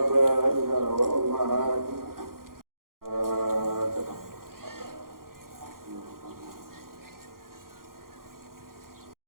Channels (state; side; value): late; left; 0.92 ms